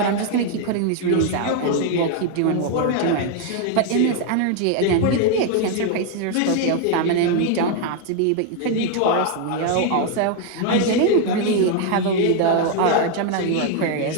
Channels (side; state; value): both; different; correlation 0.01